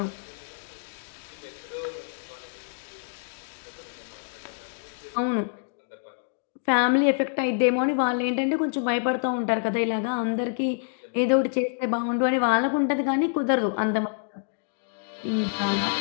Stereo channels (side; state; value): right; silent; digital silence